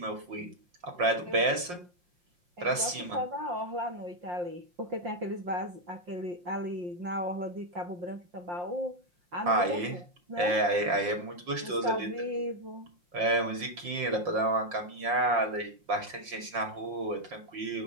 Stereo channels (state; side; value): late; left; 5.7 ms